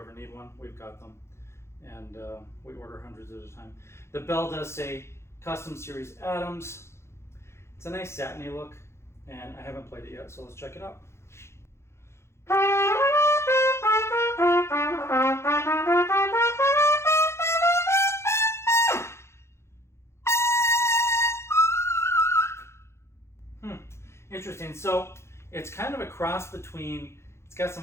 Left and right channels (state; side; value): late; right; 0.13 ms